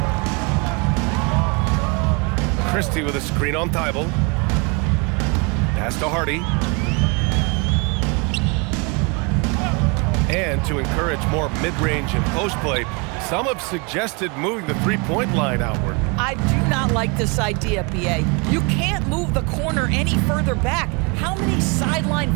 Christie with a screen on Thibault. Pass to Hardy. And to encourage more mid-range and post play, some have suggested moving the three-point line outward. I do not like this idea, BA. You can't move the corner any further back. How many sideline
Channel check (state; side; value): quieter; left; 30.6 dB